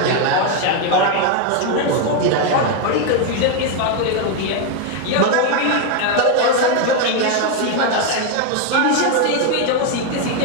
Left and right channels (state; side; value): different; both; correlation 0.01